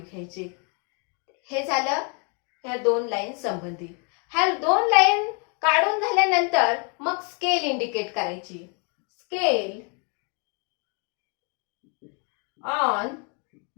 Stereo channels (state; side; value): quieter; right; 36.6 dB